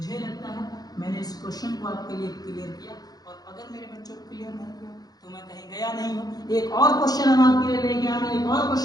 लगता है मैंने इस क्वेश्चन को आपके लिए क्लियर किया, और अगर मेरे बच्चों को क्लियर नहीं किया तो मैं कहीं गया नहीं हूँ। एक और क्वेश्चन हम आपके लिए लेके आए, एक और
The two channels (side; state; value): right; late; 0.19 ms